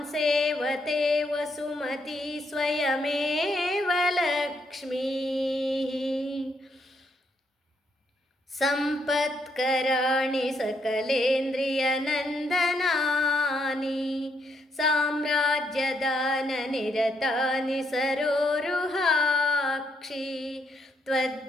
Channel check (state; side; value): normal; both; correlation 0.75